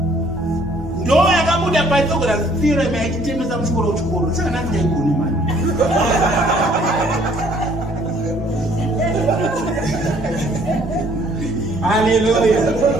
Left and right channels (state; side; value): normal; both; correlation 0.60